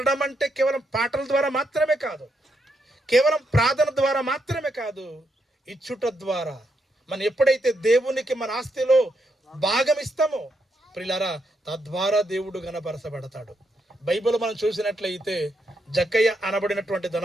అంటే కేవలం పాటల ద్వారా మాత్రమే కాదు, కేవలం ప్రార్థన ద్వారా మాత్రమే కాదు, ఇచ్చుట ద్వారా. మనం ఎప్పుడైతే దేవునికి మన ఆస్తిలో భాగం ఇస్తామో ప్రియులారా, తద్వారా దేవుడు గణపరచబడతాడు. బైబిల్ మనం చూసినట్లయితే జక్కయ్య అనబడినటువంటి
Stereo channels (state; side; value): normal; both; correlation 0.80